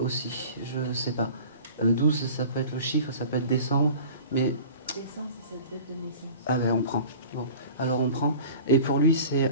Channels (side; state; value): both; inverted; correlation -0.43